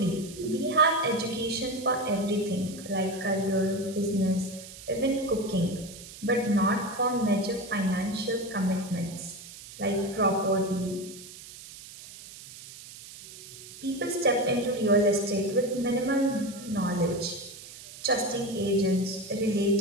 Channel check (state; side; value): noise; right; hiss, 16 dB below the sound